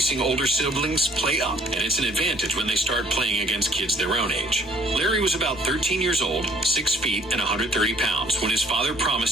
older siblings play up, and it's an advantage when they start playing against kids their own age. Larry was about 13 years old, 6 feet, and 130 pounds when his father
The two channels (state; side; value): normal; both; correlation 0.59